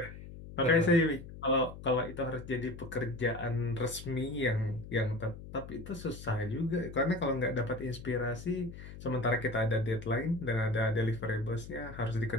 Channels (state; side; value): noise; left; hum, 13 dB below the sound